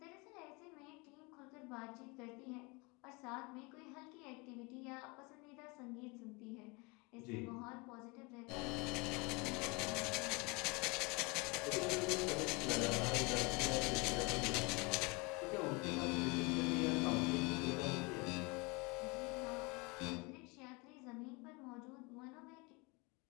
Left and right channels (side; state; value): right; quieter; 27.8 dB